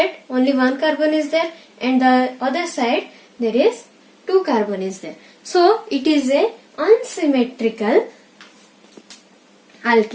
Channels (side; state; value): both; identical; correlation 1.00